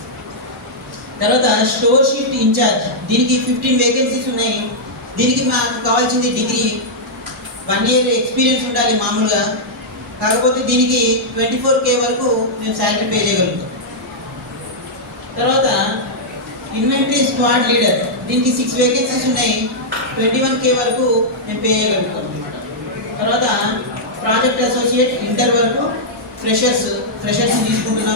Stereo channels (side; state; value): both; normal; correlation -0.08